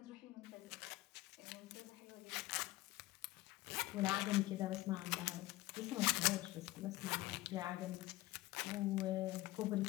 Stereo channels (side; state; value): right; quieter; 18.1 dB